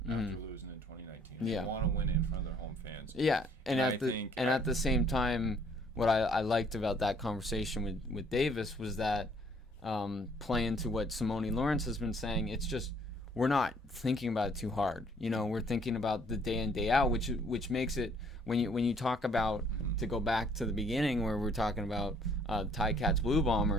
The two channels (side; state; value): both; normal; correlation 0.62